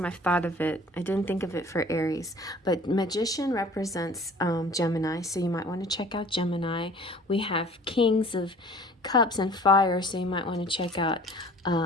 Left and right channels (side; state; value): both; normal; correlation 0.49